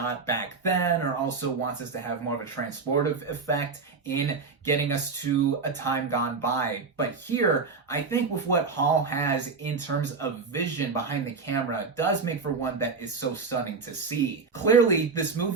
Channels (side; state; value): left; quieter; 4.6 dB